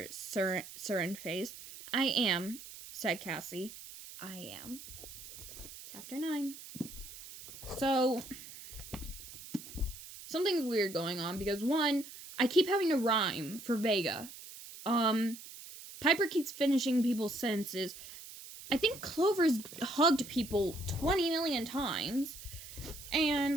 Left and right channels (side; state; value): right; noise; hiss, 14 dB below the sound